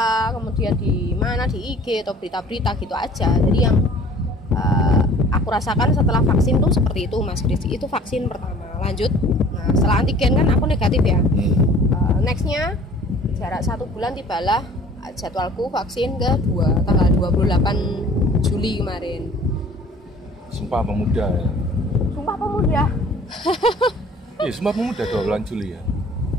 kemudian di mana di IG atau berita-berita gitu aja. Jadi yang aku rasakan setelah vaksin tuh seperti itu Mas Kris. Itu vaksin pertama. Lanjut, nah setelah antigen kan aku negatif ya. Nextnya jarak 1 bulan tibalah jadwalku vaksin kedua tanggal 28 Juli kemarin. Sumpah Pemuda ya. Sumpah Pemuda. Iya, Sumpah Pemuda 2 Juli ya.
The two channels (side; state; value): both; normal; correlation 0.50